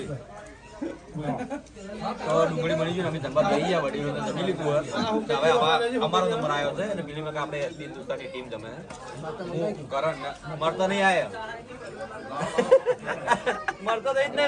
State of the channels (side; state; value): both; identical; correlation 1.00